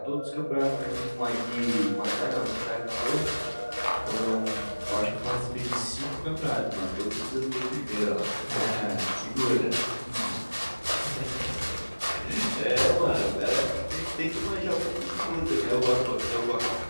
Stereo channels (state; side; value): inverted; both; correlation -1.00